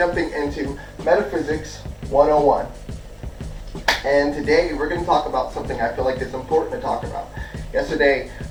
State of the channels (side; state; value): both; identical; correlation 1.00